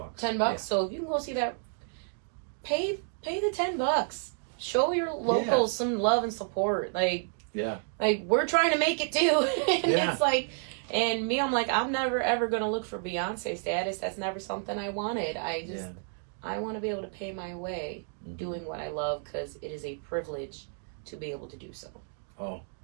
Yeah. So if you can go see that, pay the $10. Show your locals some love and support. Like we're trying to make it too. And it's like, and me, I'm like, I'm never ever gonna look for Beyonce status. That's never something I wanted. I want to be able to pay my way doing what I love, because it is a privilege to be able to do so. Oh,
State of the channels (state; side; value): silent; left; 58 dB below the other